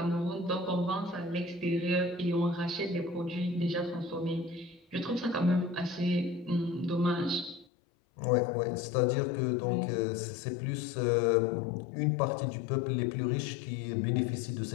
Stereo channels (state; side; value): drops out; right; at 7.7 s